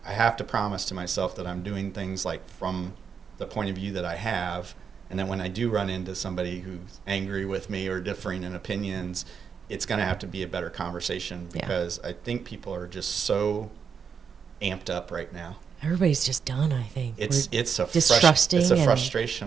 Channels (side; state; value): left; quieter; 6.6 dB